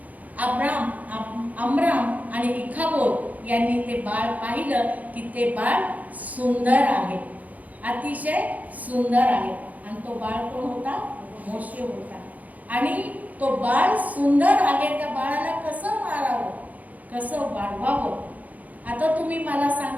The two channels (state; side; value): late; left; 0.077 ms